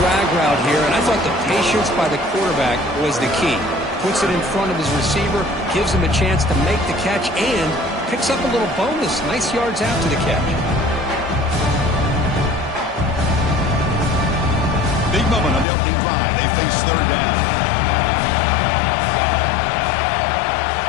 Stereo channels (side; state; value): right; drops out; at 15.7 s